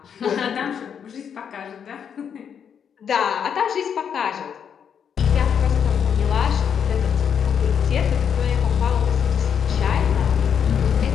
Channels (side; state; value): right; quieter; 7.7 dB